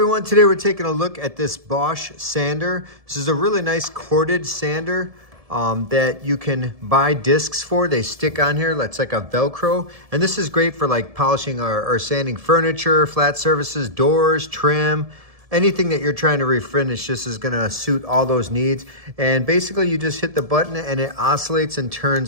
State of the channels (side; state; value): left; late; 1.7 ms